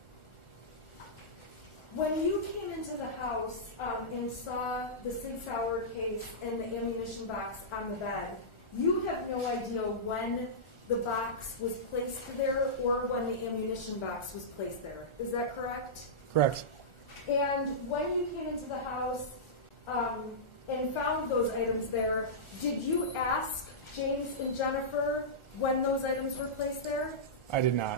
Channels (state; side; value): late; right; 1.4 ms